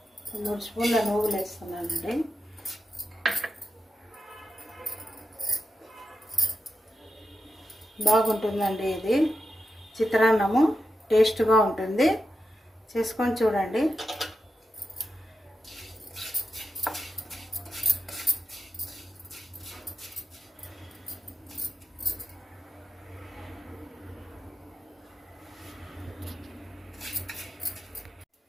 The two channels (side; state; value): both; normal; correlation 0.89